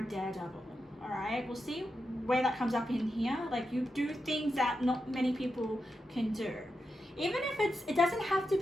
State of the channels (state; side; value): normal; both; correlation 0.88